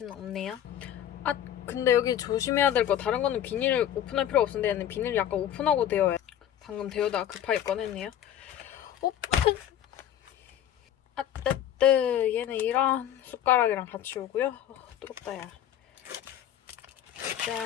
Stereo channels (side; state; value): right; quieter; 10.7 dB